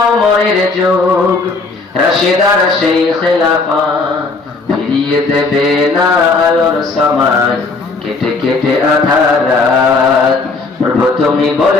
ওমরের যুগ, রাশিদার সেই খেলাফত ফিরিয়ে দেবে না আলোর সমাজ, কেটে কেটে আধার রাত। প্রভু তুমি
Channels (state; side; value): quieter; right; 3.8 dB